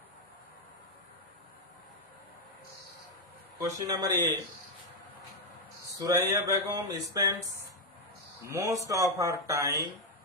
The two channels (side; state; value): both; normal; correlation 0.02